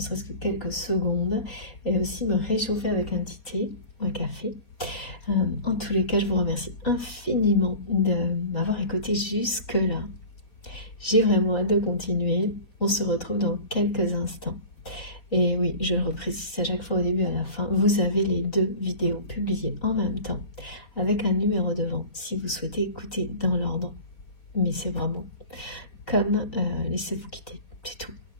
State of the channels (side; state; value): right; late; 4.3 ms